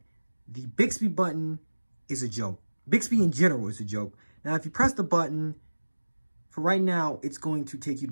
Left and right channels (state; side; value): inverted; both; correlation -1.00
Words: the Bixby button is a joke. Bixby in general is a joke. Now, if you press the button, for right now, it's going to take you